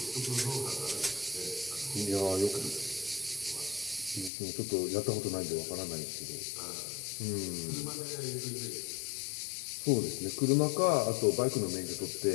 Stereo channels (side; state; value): right; drops out; at 4.3 s